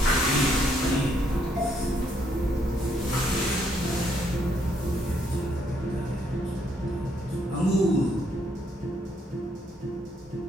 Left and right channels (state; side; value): normal; both; correlation 0.72